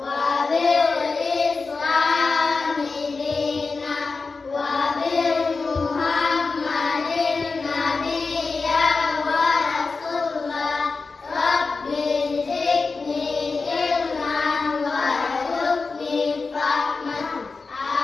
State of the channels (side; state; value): right; quieter; 4.2 dB